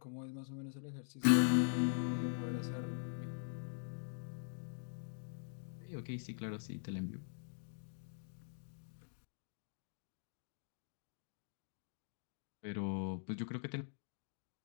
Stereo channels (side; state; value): right; silent; digital silence